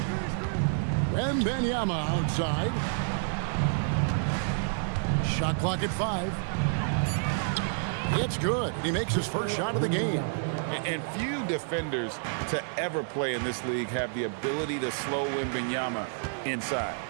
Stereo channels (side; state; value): left; silent; 58 dB below the other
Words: Wembanyama outside. Shot clock at 5. It's good. He makes his first shot of the game. And few defenders to ever play in this league have the ability to slow Wembanyama inside.